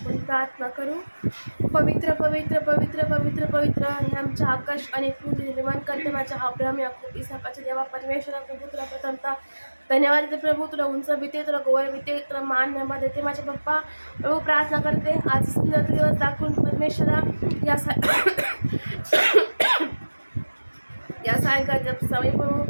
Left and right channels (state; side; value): inverted; both; correlation -1.00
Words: प्रार्थना करू. पवित्र पवित्र पवित्र पवित्र पवित्र हे आमच्या आकाश आणि पृथ्वी निर्माण करते माझ्या अब्राहम याकूब इसाकाच्या देवा परमेश्वरा प्रभू तुला प्रथमता धन्यवाद देते प्रभू. तुला उंच भीते, तुला गोवर भीते, तुला मान नेमा देते माझे पप्पा. प्रभू प्रार्थना करते आज सुंदर दिवस दाखवून परमेश्वरा या सायंकाळच्या समय प्रभू